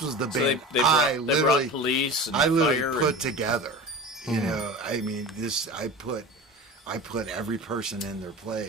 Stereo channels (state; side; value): normal; both; correlation 0.33